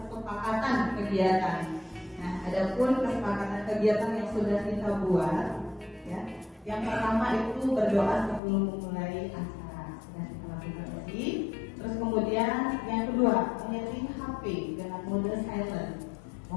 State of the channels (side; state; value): right; drops out; at 8.4 s